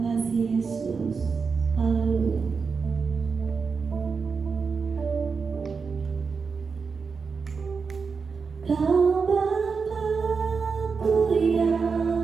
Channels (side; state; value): left; quieter; 5.2 dB